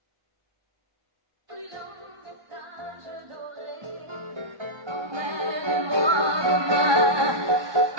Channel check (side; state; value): left; late; 1.2 ms